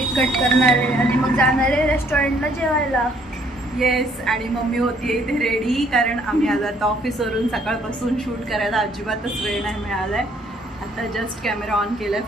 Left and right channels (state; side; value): normal; both; correlation 0.64